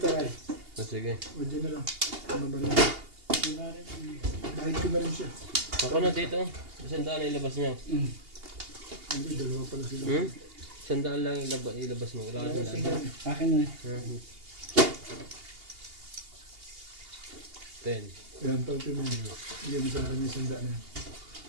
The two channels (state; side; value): late; left; 2.8 ms